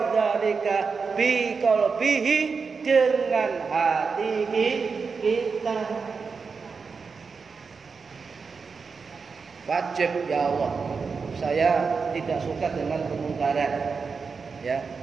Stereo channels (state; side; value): quieter; left; 5.1 dB